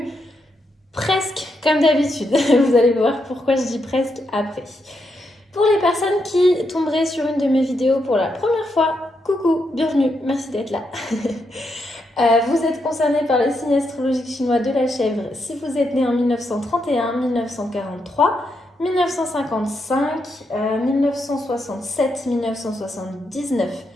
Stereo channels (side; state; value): both; normal; correlation 0.81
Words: presque comme d'habitude. Vous allez voir pourquoi je dis presque après. Pour les personnes qui tomberaient sur une de mes vidéos pour la première fois, coucou, bienvenue, merci d'être là. Vous êtes concerné par le signe astrologique chinois de la chèvre si vous êtes né en 1931, 1943, 1955, 1967, 1979,